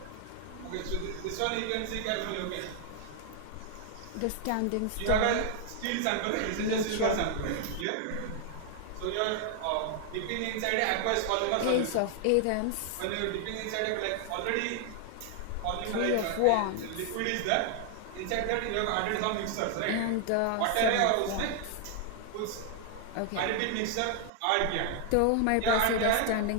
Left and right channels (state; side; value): different; both; correlation 0.00